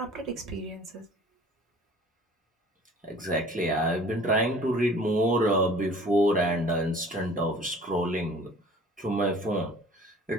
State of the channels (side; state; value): both; normal; correlation 0.48